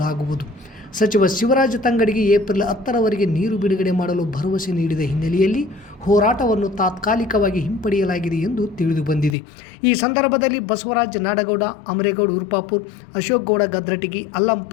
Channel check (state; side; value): drops out; right; at 9.3 s